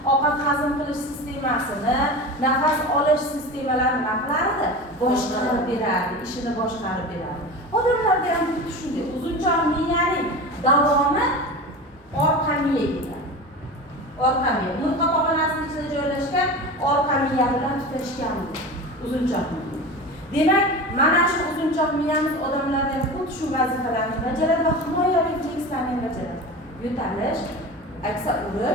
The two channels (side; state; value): both; normal; correlation 0.30